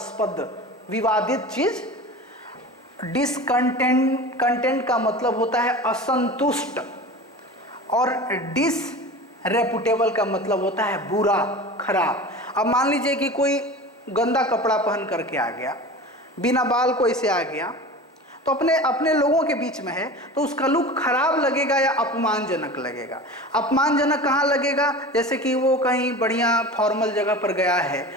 विवादित चीज। डिसकंटेंट का मतलब होता है असंतुष्ट, और डिसरेपुटेबल का मतलब होता है बुरा, खराब। अब मान लीजिए कि कोई गंदा कपड़ा पहन करके आ गया, बिना बाल को ऐसे आ गया, तो अपने लोगों के बीच में है, तो उसका लुक खराब लगेगा या अपमानजनक लगेगा? अपमानजनक कहाँ लगेगा? जैसे कि वो कहीं बढ़िया फॉर्मल जगह पर गया है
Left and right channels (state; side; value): normal; both; correlation 0.34